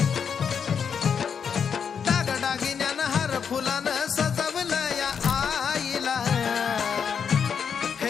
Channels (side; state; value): right; quieter; 6.9 dB